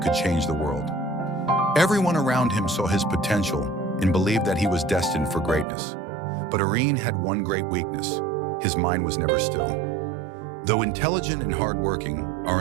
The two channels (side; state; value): left; drops out; at 5.7 s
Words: could change the world. Everyone around him saw his potential and believed that he was destined for greatness. But Arin had one great weakness: his mind was never still. Though intelligent and hardworking,